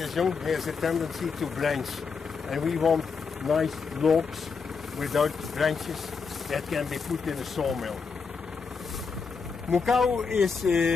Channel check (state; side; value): quieter; right; 5.3 dB